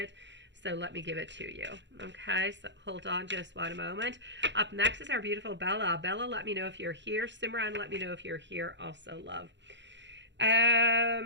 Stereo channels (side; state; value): left; late; 0.52 ms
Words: so let me give it to you. Okay, so hold on just one moment. Up next is our beautiful Bella. Bella, let me know if you're here. Simran, let me know if you're here also, love.